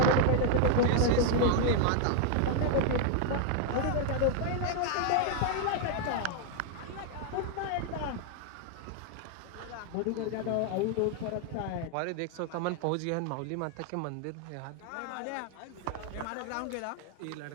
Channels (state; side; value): different; both; correlation 0.00